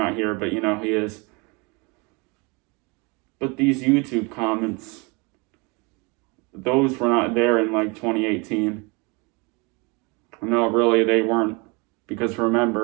here, but he is. But these YouTube comments, those were not there in like 2018. No, really, they weren't. Because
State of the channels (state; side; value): quieter; left; 29.0 dB